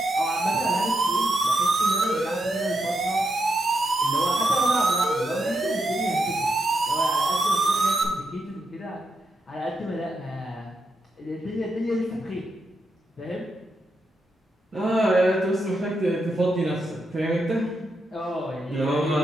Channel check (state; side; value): normal; both; correlation 0.83